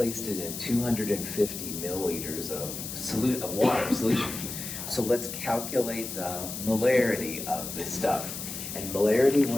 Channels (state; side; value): noise; left; hiss, 7 dB below the sound